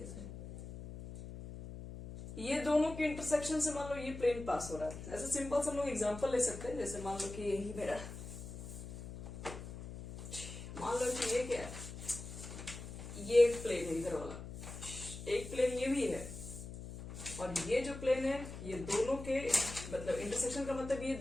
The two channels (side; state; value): left; noise; hum, 10 dB below the sound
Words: से ये दोनों के इंटरसेक्शन से मान लो ये प्लेन पास हो रहा है। ऐसे सिंपल से हम लोग एग्जांपल ले सकते हैं। जैसे मान लो कि यही मेरा, मान लो कि ये क्या है, ये एक प्लेन है इधर वाला, एक प्लेन ये भी है, और ये जो प्लेन है ये दोनों के मतलब इंटरसेक्शन का मतलब ये